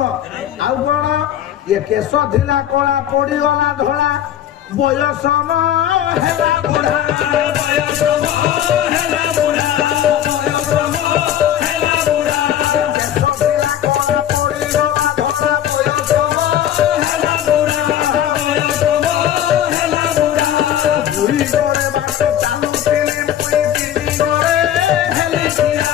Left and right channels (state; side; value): quieter; right; 11.0 dB